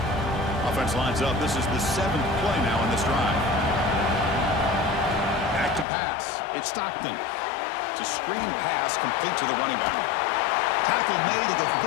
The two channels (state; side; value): drops out; right; at 5.9 s